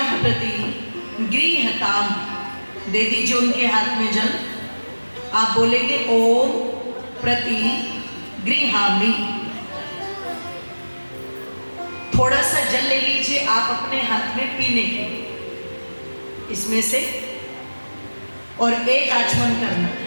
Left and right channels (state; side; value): inverted; both; correlation -1.00